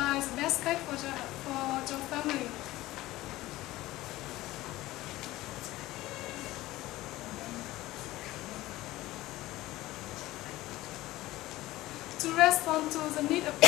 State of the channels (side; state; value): right; quieter; 17.3 dB